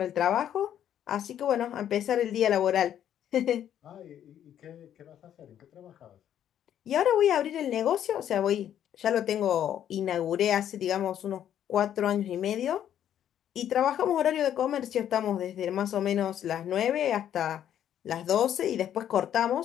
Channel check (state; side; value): quieter; right; 10.3 dB